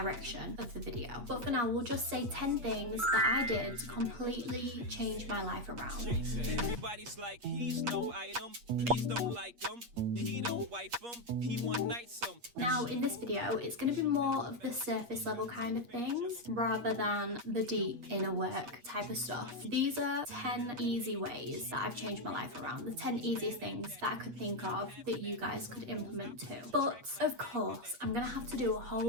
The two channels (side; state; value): left; late; 8.4 ms